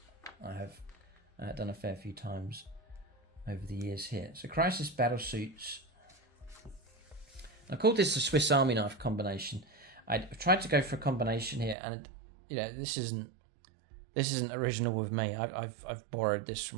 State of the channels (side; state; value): left; drops out; at 11.8 s